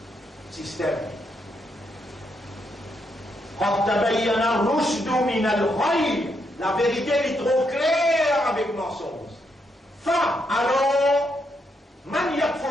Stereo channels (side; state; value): both; normal; correlation 0.78